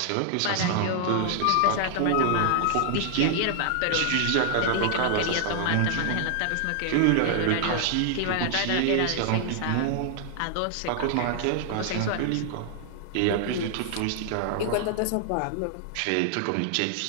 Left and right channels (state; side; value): different; both; correlation 0.00